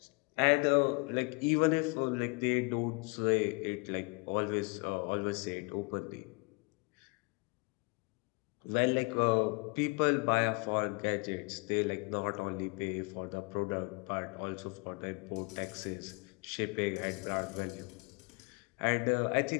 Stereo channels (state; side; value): quieter; right; 30.4 dB